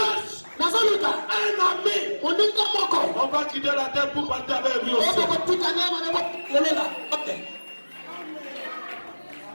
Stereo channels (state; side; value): inverted; both; correlation -1.00